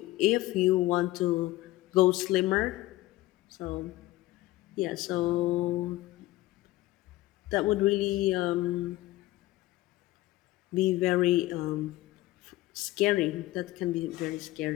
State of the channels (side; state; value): right; quieter; 17.4 dB